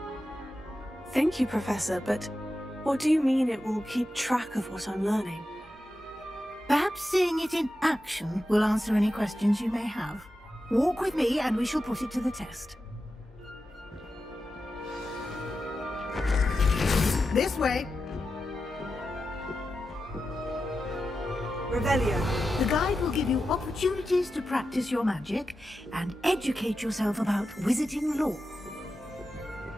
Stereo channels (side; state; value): both; normal; correlation 0.91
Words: Thank you, Professor, but what do you mean it will keep track of what I'm learning? Perhaps seeing it in action will answer any questions you may have. Walk with me and we shall put it to the test. This way. Revelio. The guide will give you opportunities to practice your magic and educate yourself about wizarding lore.